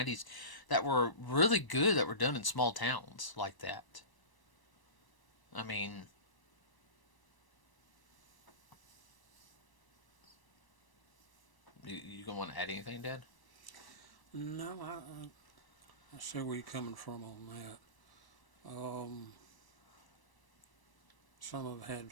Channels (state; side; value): late; right; 1.0 ms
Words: that were really good that were done in small towns like that. I mean, you gonna want to add anything, Dad? No, I see where you're coming from on that. Some of it had